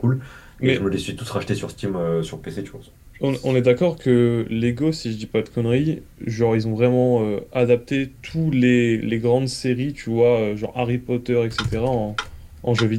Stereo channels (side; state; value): both; identical; correlation 1.00